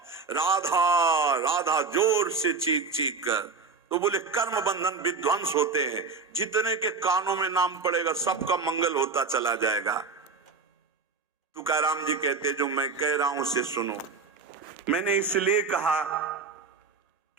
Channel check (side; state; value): left; quieter; 4.5 dB